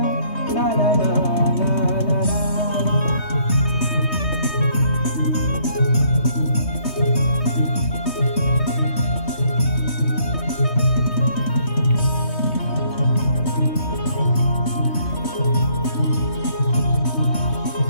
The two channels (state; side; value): late; right; 3.2 ms